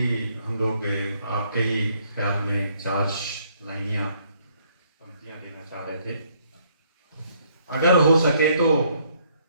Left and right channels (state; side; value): inverted; both; correlation -0.67